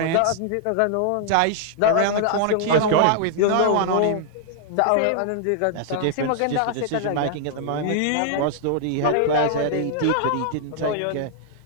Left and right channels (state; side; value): different; both; correlation -0.01